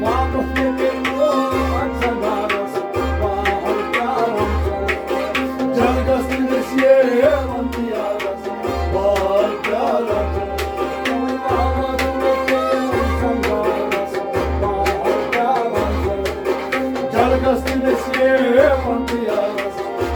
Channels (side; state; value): both; identical; correlation 1.00